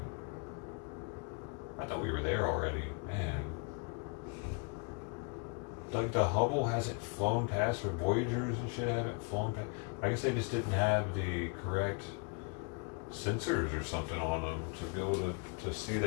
I thought we were there already, man. Like the Hubble hasn't flown past, or Voyagers and shit haven't flown past. I guess they just didn't have the correct sensors or something on them to be able to see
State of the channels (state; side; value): quieter; right; 36.1 dB